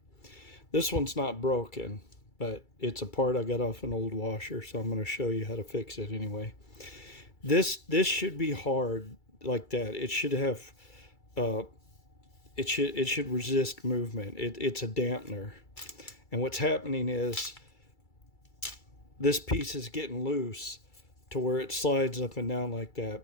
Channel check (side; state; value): right; late; 2.3 ms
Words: This one's not broken, but it's a part I got off an old washer, so I'm going to show you how to fix it anyway. This should be hard like that. It should have it should resist movement. It's a dampener. And what's happening is this piece is getting loose to where it slides up and down like